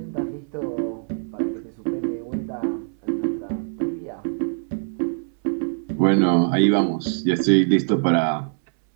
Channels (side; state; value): left; silent; 63 dB below the other